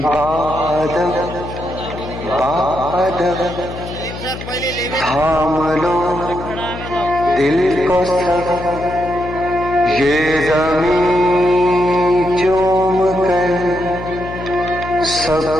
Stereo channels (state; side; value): noise; left; hum, 10 dB below the sound